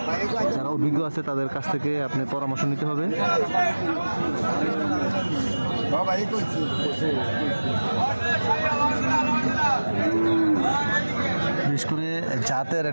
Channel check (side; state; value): both; inverted; correlation -1.00